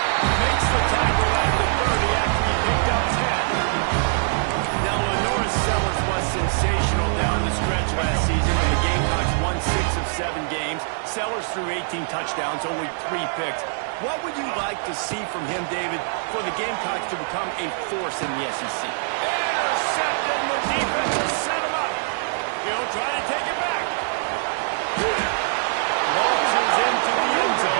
Makes the tackle at the 30 after he picked up 10. Now, Lenoris Sellers was sensational down the stretch last season when the Gamecocks won 6 of 7 games. Sellers threw 18 touchdowns, only 3 picks. What would you like to see from him, David, for the Gamecocks to become a force in the SEC? Intercepted, and the defense will set him up. He'll try to take it back. Launches into the end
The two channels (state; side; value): silent; left; digital silence